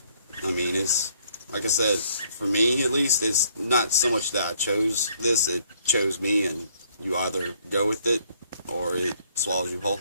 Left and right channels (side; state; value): both; inverted; correlation -0.66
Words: I mean, it's, like I said, for me at least, it's not so much that I chose this, it chose me, and you either go with it, or it swallows you whole.